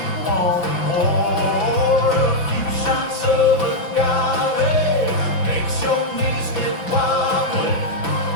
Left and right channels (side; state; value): right; late; 5.8 ms